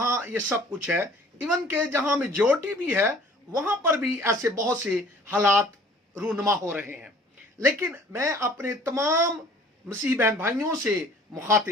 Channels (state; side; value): normal; both; correlation 0.52